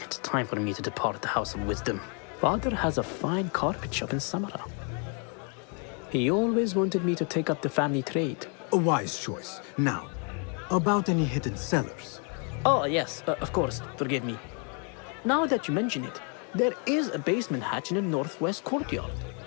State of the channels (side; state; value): right; quieter; 38.3 dB